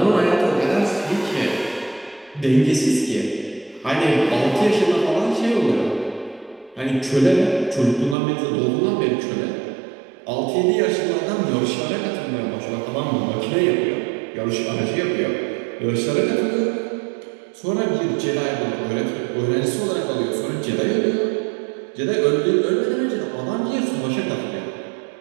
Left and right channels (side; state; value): left; drops out; at 8.2 s